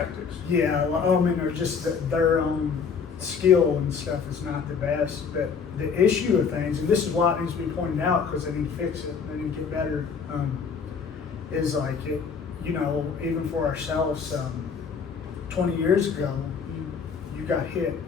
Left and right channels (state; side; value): quieter; right; 6.0 dB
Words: Yeah, I mean, or just their own skill and stuff is not the best. But the issue of things, and this is why it needs to be pointed out because they need to fix it, they need to get better, is like, it, you know, even for ourselves, 20 years ago, you got hit